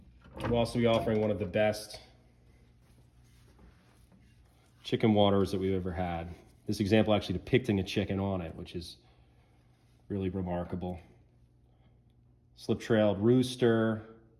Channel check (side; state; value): both; identical; correlation 1.00